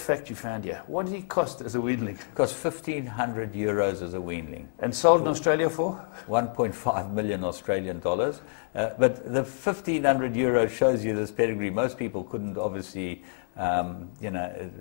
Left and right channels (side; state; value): right; silent; digital silence